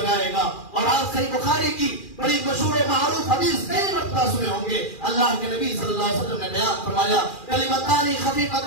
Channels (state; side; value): late; right; 2.4 ms